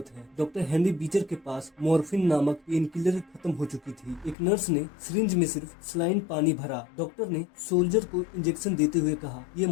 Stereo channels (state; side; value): drops out; right; at 4.4 s